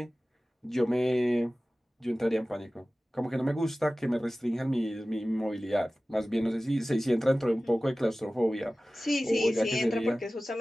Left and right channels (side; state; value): both; normal; correlation 0.97